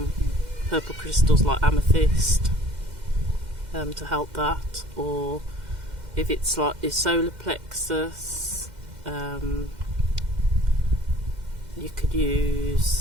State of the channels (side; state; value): left; late; 2.1 ms